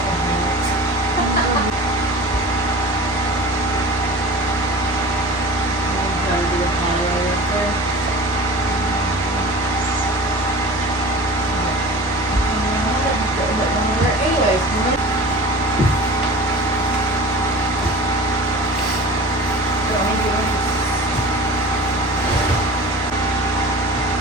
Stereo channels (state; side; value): normal; both; correlation 0.37